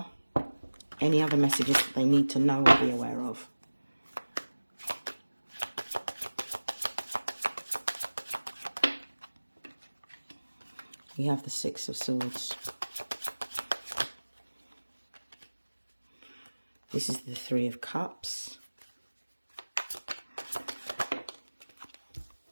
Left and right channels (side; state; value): both; inverted; correlation -1.00